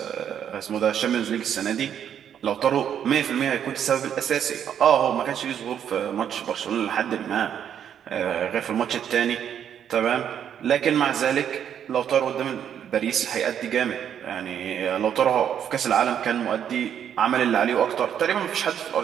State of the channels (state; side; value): quieter; left; 9.0 dB